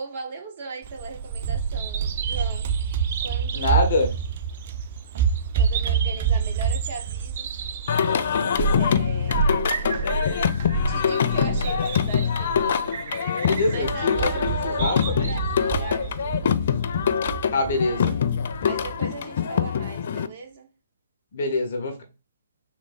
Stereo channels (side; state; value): both; inverted; correlation -0.54